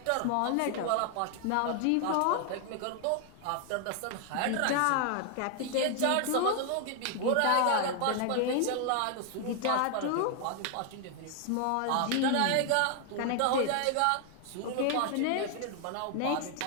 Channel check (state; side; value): different; both; correlation 0.00